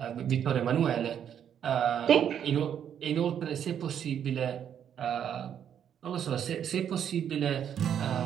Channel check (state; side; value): quieter; left; 9.0 dB